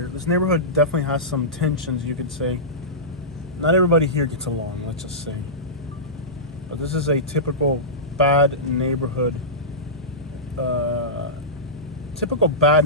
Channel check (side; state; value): both; normal; correlation -0.17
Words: this neighborhood definitely has some tensions, you could say. Not everybody here gets along, let's just say. But this is a typical bad neighborhood. Typical bad